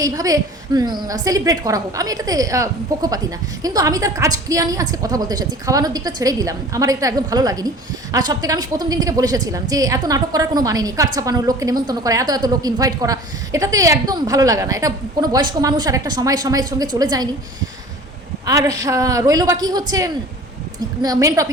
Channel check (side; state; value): both; normal; correlation 0.43